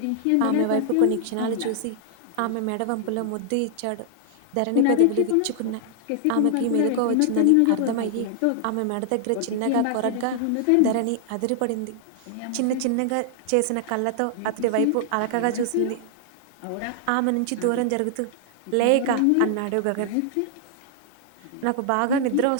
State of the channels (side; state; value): both; different; correlation 0.00